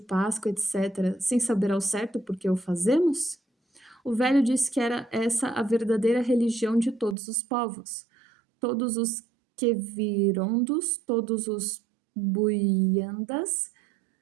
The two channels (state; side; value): drops out; left; at 7.2 s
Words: etc., sem saber ao certo por que o fazemos? O velho disse que era essa a verdadeira religião de todos os povos. Todos os Quevirondos, todos os Buiandas,